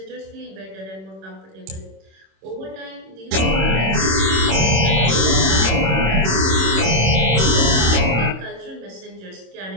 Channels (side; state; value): left; late; 26 ms